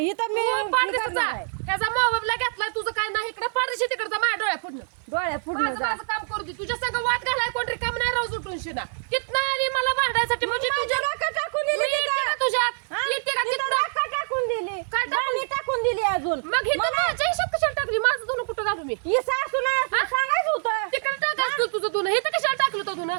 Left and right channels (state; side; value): silent; left; 58 dB below the other